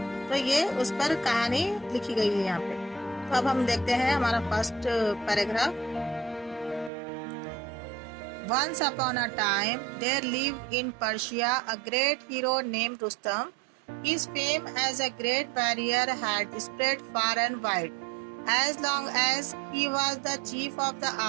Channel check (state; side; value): drops out; left; at 6.9 s